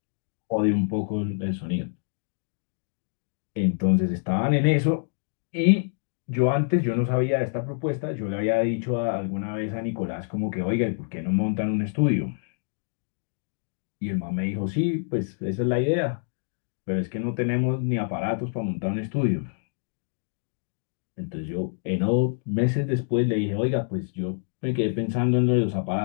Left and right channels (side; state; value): right; silent; digital silence